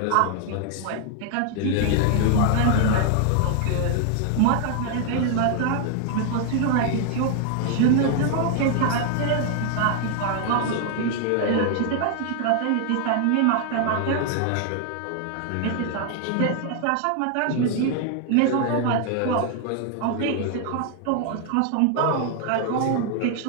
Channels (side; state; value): both; different; correlation 0.00